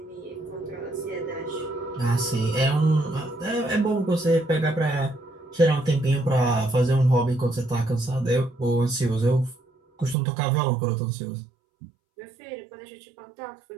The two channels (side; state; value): left; drops out; at 10.2 s